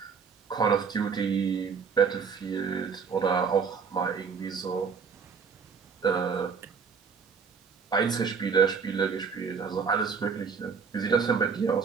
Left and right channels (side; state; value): left; quieter; 5.8 dB